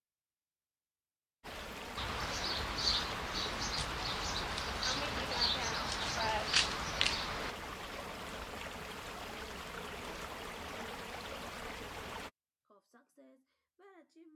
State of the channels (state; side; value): identical; both; correlation 1.00